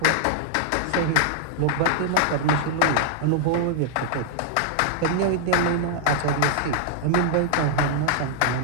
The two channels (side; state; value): both; different; correlation -0.01